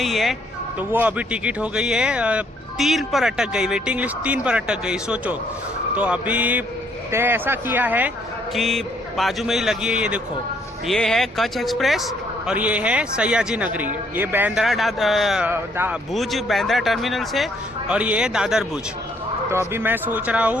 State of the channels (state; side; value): normal; both; correlation 0.67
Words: है तो वो अभी टिकट हो गई है 3 पर अटक गई, वेटिंग लिस्ट 3 पर अटक गई। सोचो। तो अभी तय ऐसा किया है कि बाजू में ही लगी है, ये देखो, ये है कच्छ एक्सप्रेस और ये है सयाजी नगरी। ये बांद्रा भुज बांद्रा टर्मिनल से और ये है दादर भुज। तो अभी मैं सोच रहा